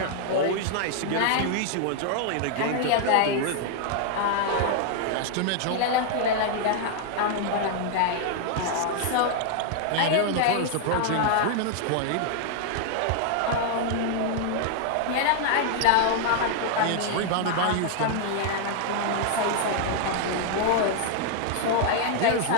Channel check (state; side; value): different; both; correlation 0.00